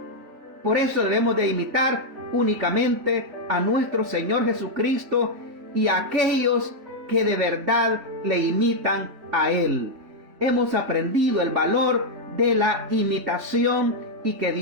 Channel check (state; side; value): late; left; 3.7 ms